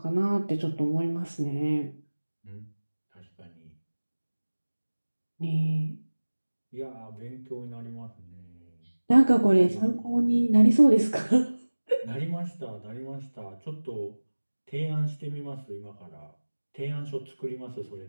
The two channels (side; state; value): both; inverted; correlation -1.00